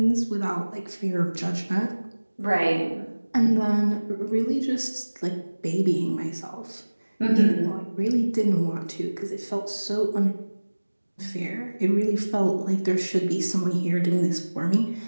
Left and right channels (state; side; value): inverted; both; correlation -1.00